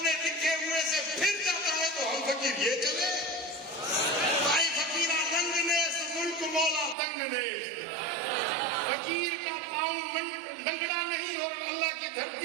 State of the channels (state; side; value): drops out; left; at 7.0 s